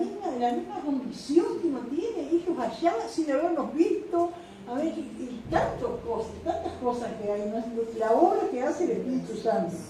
condición que uno tiene, ellos allá sin habernos visto, a ver, y tantas cosas que hay, ¿no? La obra que hace el Espíritu Santo,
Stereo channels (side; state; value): both; identical; correlation 1.00